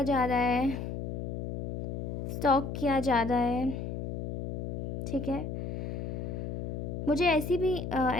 जा रहा है, स्टॉक किया जा रहा है। ठीक है, मुझे ऐसी भी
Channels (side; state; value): left; noise; hum, 4 dB below the sound